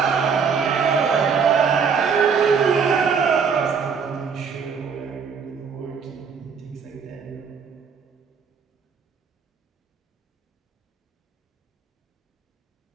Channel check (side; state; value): left; quieter; 6.1 dB